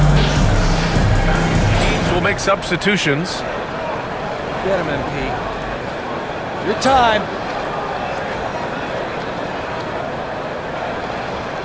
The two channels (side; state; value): both; identical; correlation 1.00